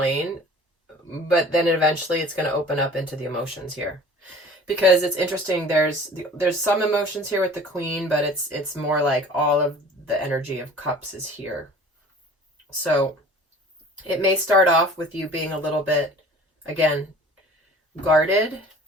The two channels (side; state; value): both; normal; correlation 0.45